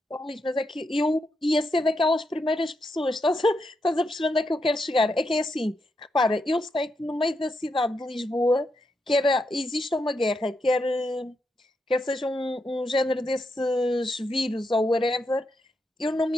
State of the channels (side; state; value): both; normal; correlation 0.83